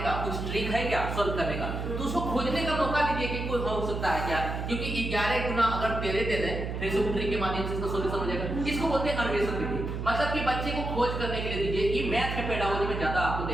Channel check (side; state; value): right; noise; hum, 4 dB below the sound